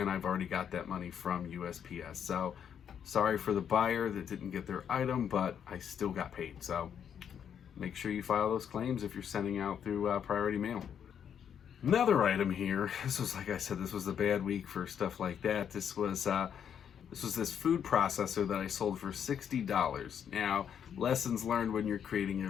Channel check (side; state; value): right; quieter; 8.4 dB